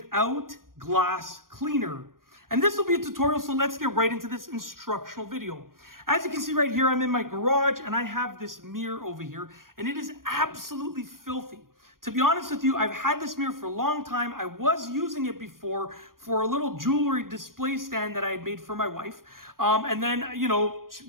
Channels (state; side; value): late; left; 0.91 ms